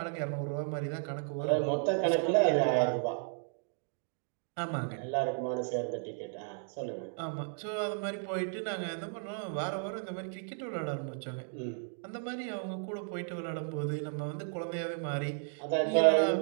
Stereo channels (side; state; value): left; silent; 55 dB below the other